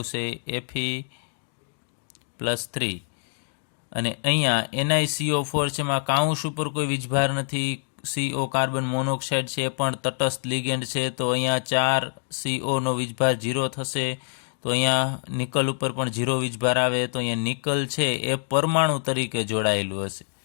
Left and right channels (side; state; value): right; silent; digital silence